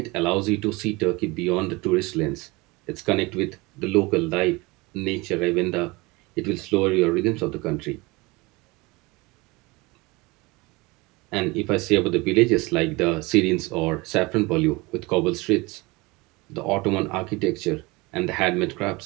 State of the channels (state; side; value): quieter; left; 23.9 dB